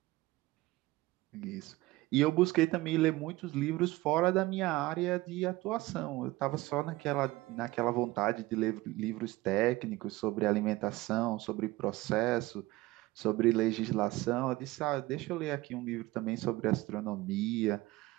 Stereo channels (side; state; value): left; quieter; 19.3 dB